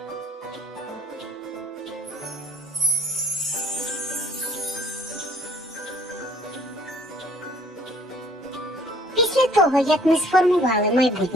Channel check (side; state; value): both; normal; correlation 0.58